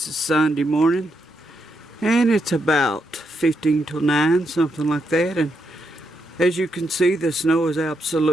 is Sunday morning, and it's about 15 till 9, something like that. And as you can see, the snow is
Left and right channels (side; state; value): both; normal; correlation 0.81